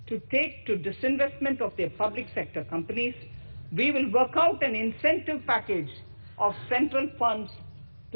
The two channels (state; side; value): inverted; both; correlation -1.00